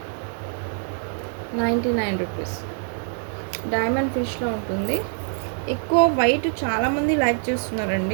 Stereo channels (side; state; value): left; silent; 56 dB below the other